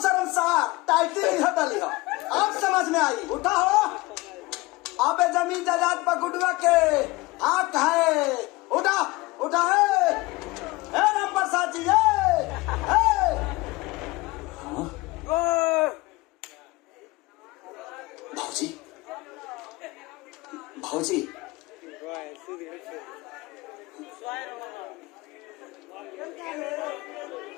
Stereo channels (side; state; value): right; quieter; 21.8 dB